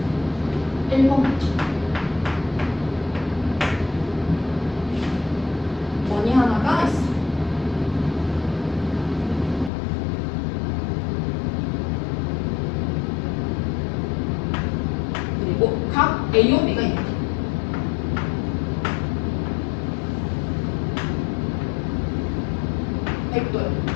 1번 원이 하나가 있어. 그리고 각 A와 B가 있다. 백도요.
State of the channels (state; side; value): drops out; right; at 9.7 s